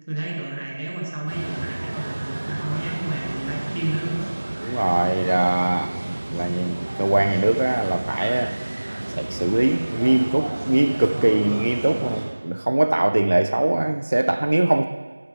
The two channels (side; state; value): both; inverted; correlation -1.00